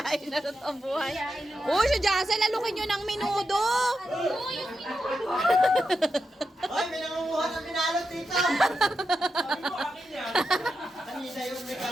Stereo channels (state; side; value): normal; both; correlation 0.87